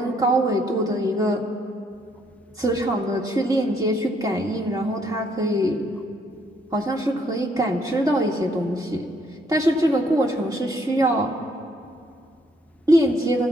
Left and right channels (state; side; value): normal; both; correlation 0.69